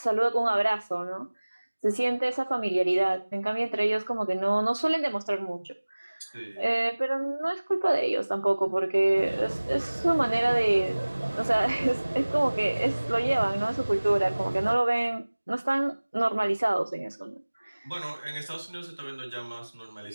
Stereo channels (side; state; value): both; inverted; correlation -1.00